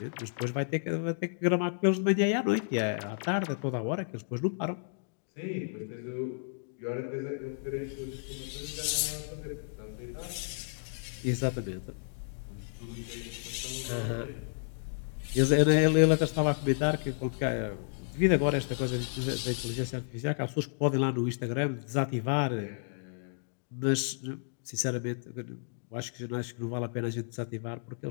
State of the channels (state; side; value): silent; right; digital silence